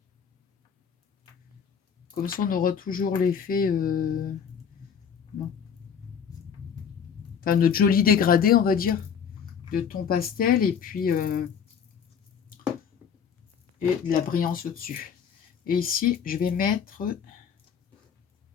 Comme ça, on aura toujours l'effet... Bon. Enfin, notre joli dégradé, on va dire, de ton pastel, et puis... et de la brillance au-dessus. Et ici, je vais mettre...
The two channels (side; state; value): right; quieter; 7.3 dB